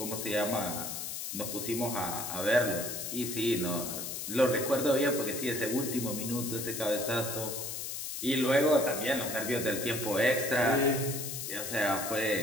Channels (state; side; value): noise; left; hiss, 5 dB below the sound